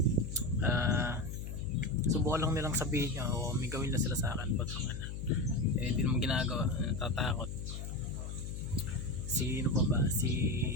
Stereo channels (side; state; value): left; noise; hum, 6 dB below the sound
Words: Subukan lang nilang sabihin niya o may gawin na sila sa akin, putang na. Hindi naman ginagawa. Natatakot. Sino pa ba? Si